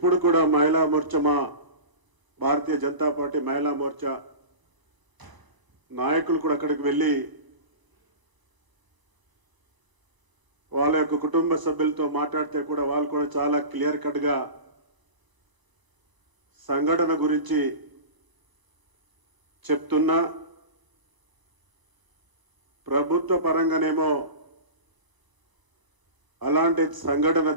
కూడా మహిళా మోర్చా, మా భారతీయ జనతా పార్టీ మహిళా మోర్చా నాయకులు కూడా అక్కడికి వెళ్ళి వాళ్ళ యొక్క కుటుంబ సభ్యులతో మాట్లాడితే కూడా వాళ్ళు కూడా చాలా క్లియర్ కట్గా సంఘటన గురించి చెప్తున్నా, ప్రభుత్వ పరంగానేమో అలాంటి సంఘటన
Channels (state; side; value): late; left; 1.0 ms